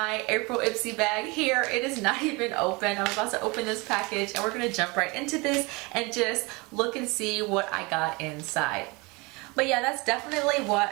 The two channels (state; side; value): quieter; left; 26.3 dB